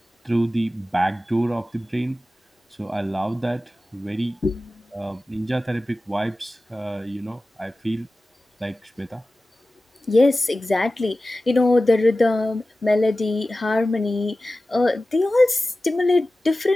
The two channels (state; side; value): normal; both; correlation 0.96